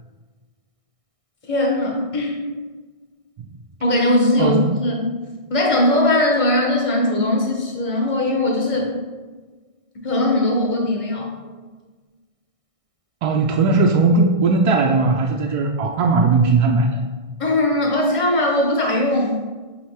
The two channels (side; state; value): left; late; 1.6 ms